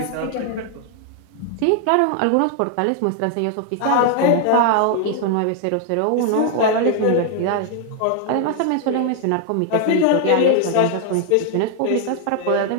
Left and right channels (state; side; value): different; both; correlation 0.00